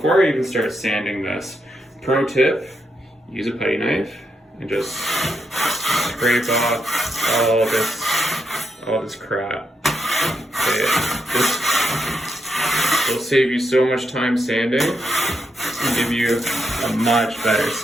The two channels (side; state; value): both; normal; correlation 0.82